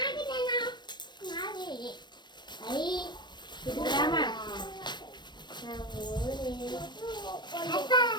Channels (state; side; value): late; right; 0.22 ms